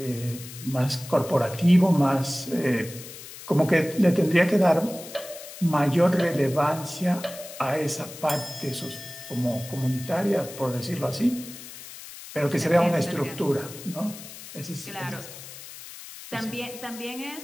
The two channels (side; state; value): left; noise; hiss, 14 dB below the sound